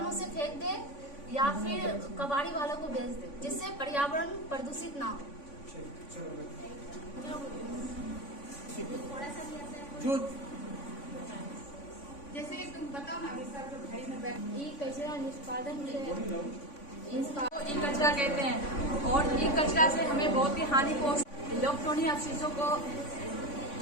उसे फेंक दे या फिर कबाड़ी वालों को बेच दे, जिससे पर्यावरण प्रदूषित ना हो। जो जैसे तुम बताओ ना, अभी सर जो घड़ी में बैठ ई कचरा निष्पादन ई कचरा कहते हैं, और ई कचरा से हमें बहुत ही हानि पहुंचती, इलेक्ट्रॉनिक अवशेषों को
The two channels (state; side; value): late; right; 3.5 ms